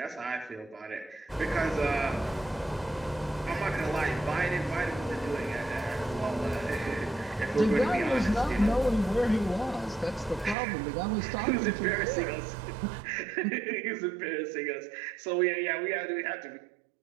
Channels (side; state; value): left; drops out; at 10.6 s